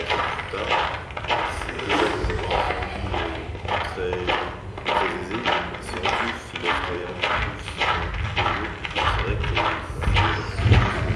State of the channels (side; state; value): both; identical; correlation 1.00